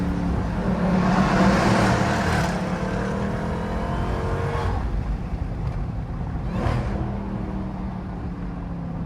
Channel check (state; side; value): identical; both; correlation 1.00